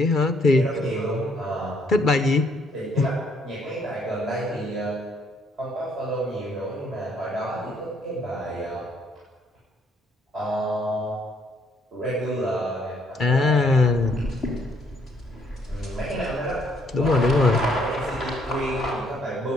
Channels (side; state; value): both; normal; correlation 0.68